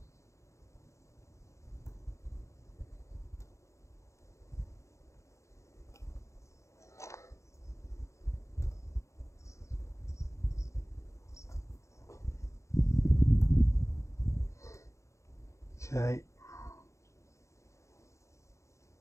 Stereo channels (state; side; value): late; right; 0.14 ms